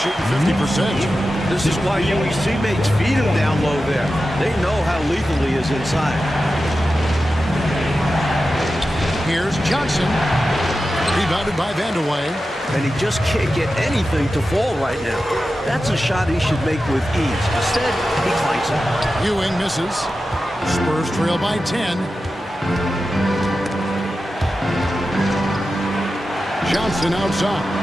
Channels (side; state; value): both; normal; correlation 0.92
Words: 50%. This is why Ewing's teammates feed him down low there. They know how lethal he is inside. Here's Johnson. Rebounded by Vandeweghe. And he just can't get anything to fall right now. That's a shot he should make with ease. Instead, he clanks it. Ewing misses. Spurs trail by 10. Johnson outside.